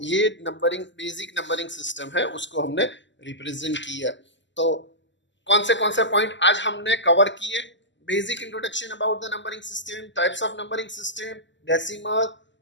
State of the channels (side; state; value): right; late; 0.54 ms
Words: ये नंबरिंग बेसिक नंबरिंग सिस्टम है उसको हमने रिप्रेजेंट किया। तो कौन से पॉइंट आज हमने कवर किए, basic introduction about the numbering system, types of numbering system, decimal,